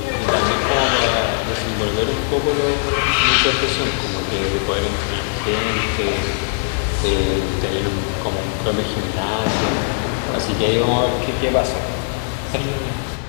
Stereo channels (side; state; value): right; silent; digital silence